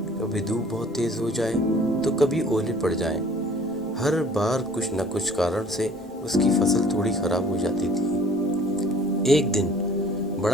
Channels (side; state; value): both; normal; correlation 0.53